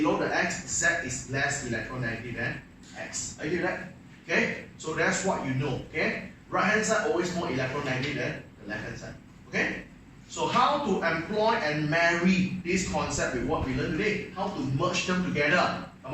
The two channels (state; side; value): identical; both; correlation 1.00